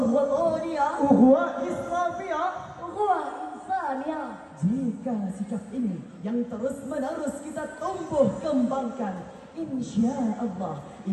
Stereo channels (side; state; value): both; identical; correlation 1.00